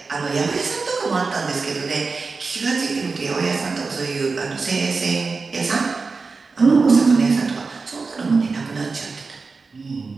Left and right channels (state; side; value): quieter; left; 4.3 dB